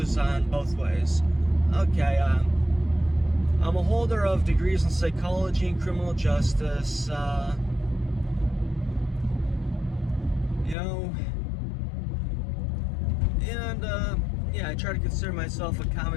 on both ways. Okay, I'm a holder of degrees in psychology and criminal justice. I try to consider myself a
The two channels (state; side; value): drops out; right; at 10.8 s